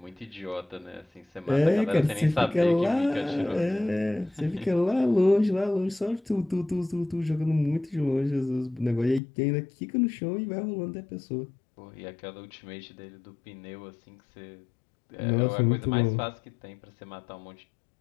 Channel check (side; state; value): right; drops out; at 9.2 s